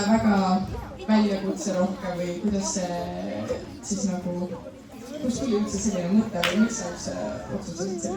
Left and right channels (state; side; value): identical; both; correlation 1.00